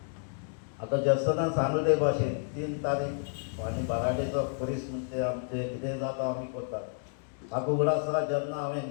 आतां जर्सनान सांगले ते भाशेन 3 तारीख आनी बाराडेचो परीस म्हणजे आमचें कितें जाता आमी करतात. म्हाका उगड आसा जेन्ना हांवें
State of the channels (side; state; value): right; silent; 57 dB below the other